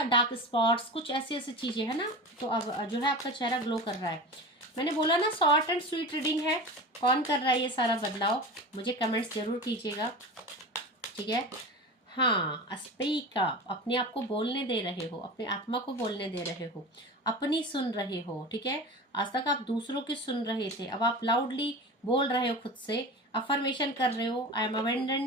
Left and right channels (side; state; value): both; normal; correlation 0.31